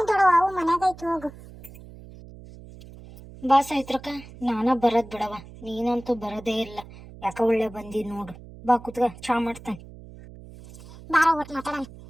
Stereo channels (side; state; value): right; noise; hum, 18 dB below the sound